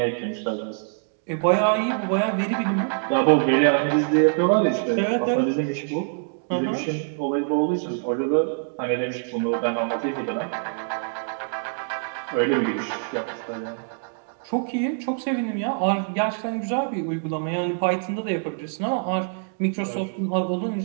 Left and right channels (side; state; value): left; silent; digital silence